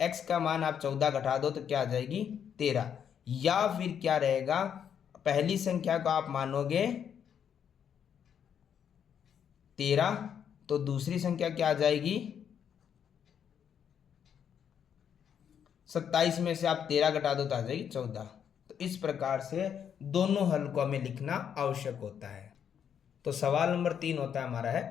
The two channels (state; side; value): quieter; right; 8.3 dB